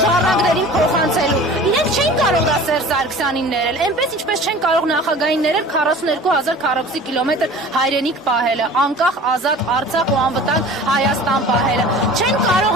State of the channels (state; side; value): normal; both; correlation 0.42